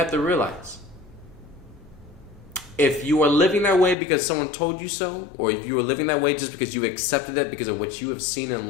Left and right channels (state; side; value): drops out; right; at 4.0 s